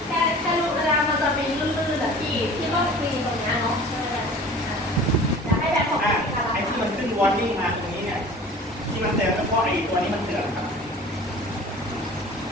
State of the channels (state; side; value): normal; both; correlation 0.43